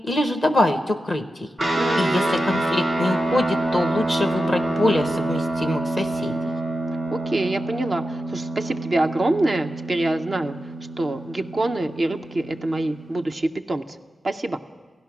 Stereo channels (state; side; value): normal; both; correlation 0.91